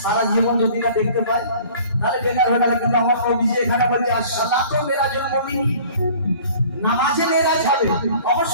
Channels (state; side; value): inverted; both; correlation -0.48